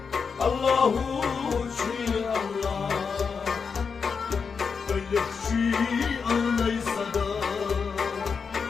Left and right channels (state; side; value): quieter; right; 5.7 dB